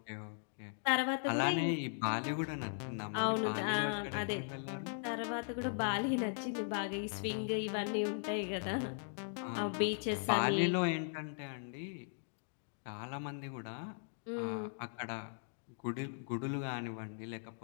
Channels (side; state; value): right; silent; digital silence